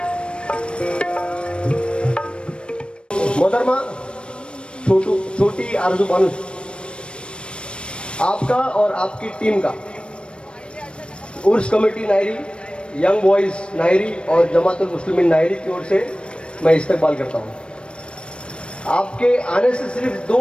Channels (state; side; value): late; right; 0.057 ms